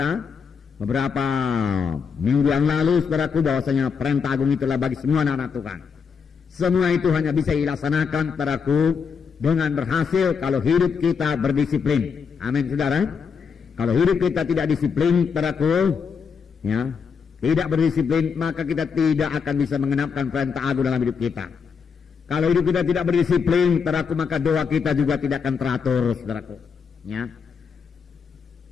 beberapa minggu yang lalu, saudaraku, bahwasanya perintah agung itulah bagi semua anak-anak Tuhan. Semua itu hanya bisa dilaksanakan, saudaraku, dengan berhasil kalau hidup kita berdisiplin. Amin, saudara. Kalau hidup kita tidak disiplin, saudaraku, ya, tidak berdisiplin, maka kita tidak akan bisa mengenapkan perintah agung dalam hidup kita. Kalau hidup kita tidak berdisiplin, saudaraku, maka doa kita juga tidak akan teratur, saudaraku. Ya.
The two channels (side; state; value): right; quieter; 6.1 dB